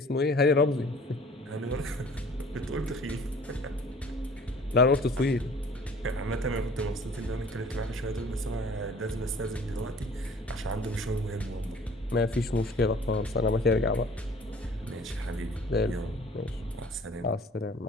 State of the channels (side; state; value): both; normal; correlation 0.50